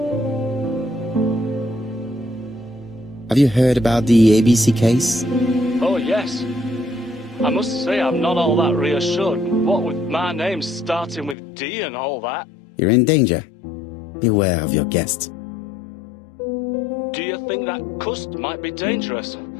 Have you heard about the ABC case? Oh, yes. I must say I'm not all that reassured. What with my name starting with D and all that. You're in danger. Beware of your guest. Do you think that Cust might be dangerous?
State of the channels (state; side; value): drops out; right; at 11.4 s